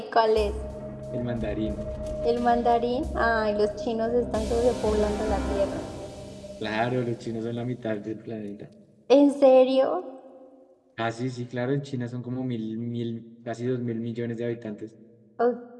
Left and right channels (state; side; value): identical; both; correlation 1.00